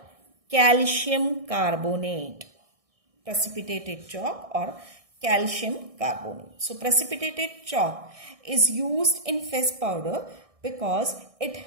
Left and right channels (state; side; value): late; left; 1.6 ms